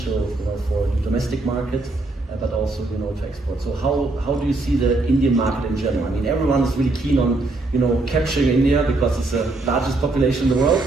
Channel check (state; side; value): quieter; left; 3.1 dB